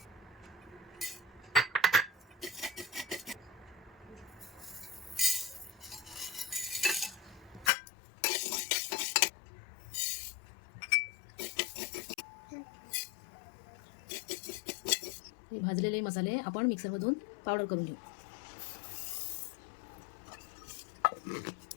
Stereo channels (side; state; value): right; drops out; at 7.7 s